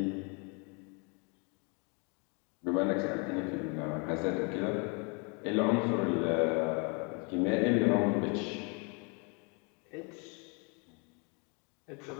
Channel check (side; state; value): right; quieter; 34.0 dB